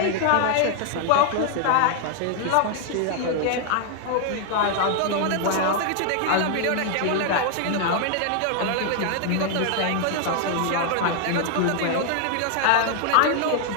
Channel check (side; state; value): both; different; correlation 0.00